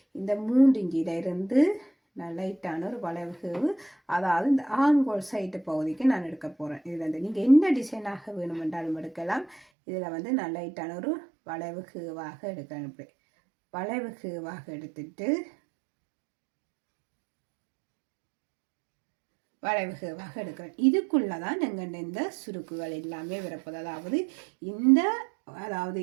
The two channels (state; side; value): drops out; left; at 9.6 s